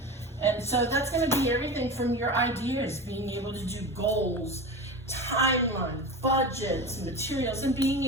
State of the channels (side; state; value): both; normal; correlation 0.28